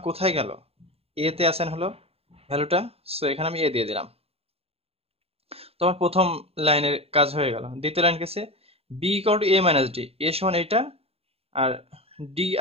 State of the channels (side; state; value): left; late; 0.29 ms